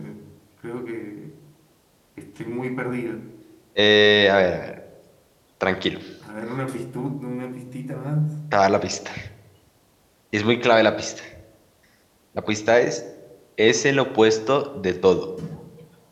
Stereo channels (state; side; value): identical; both; correlation 1.00